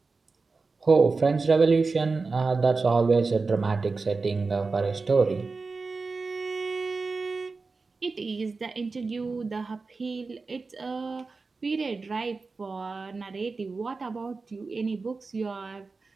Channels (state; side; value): quieter; left; 4.1 dB